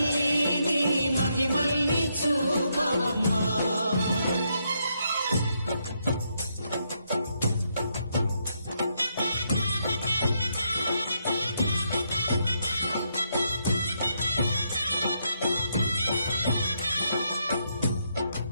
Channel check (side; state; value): both; inverted; correlation -0.78